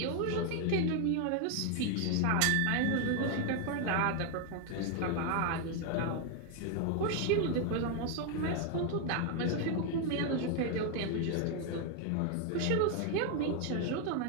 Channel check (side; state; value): both; different; correlation 0.01